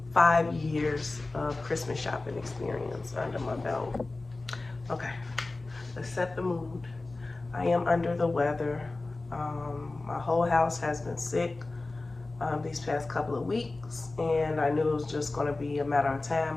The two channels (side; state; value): right; quieter; 3.2 dB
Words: years of Christmas shopping experience under my belt. Okay, let's set the mood. I am under the weather. My whole house has been sick these past couple of weeks, and I knew it was just going to be a matter of